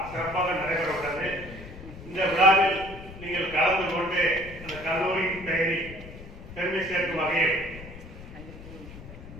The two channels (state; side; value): noise; left; rumble, 14 dB below the sound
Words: சிறப்பாக நடைபெற உள்ளது. இந்த விழாவில் நீங்கள் கலந்து கொண்டு அந்த கல்லூரியின் பெயரை பெருமை சேர்க்கும் வகையில்